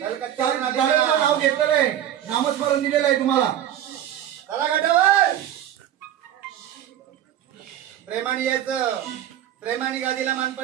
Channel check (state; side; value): quieter; left; 11.2 dB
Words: नाव घेतलेलं आहे, नामस्मरण दिलेलं आहे तुम्हाला. चला घाटावर प्रेमाने यायचं, प्रेमाने गादीला